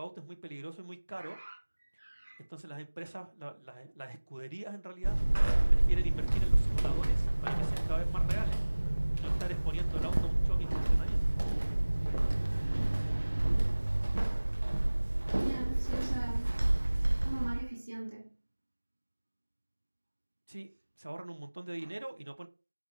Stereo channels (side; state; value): both; inverted; correlation -1.00